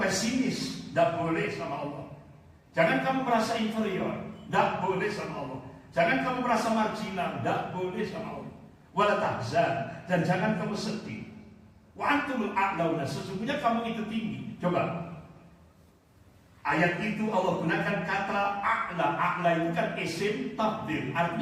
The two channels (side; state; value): both; identical; correlation 1.00